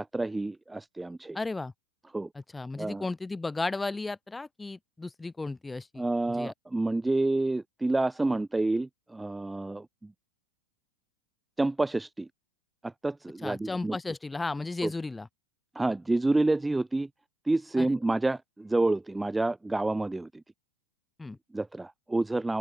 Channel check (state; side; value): normal; both; correlation 0.98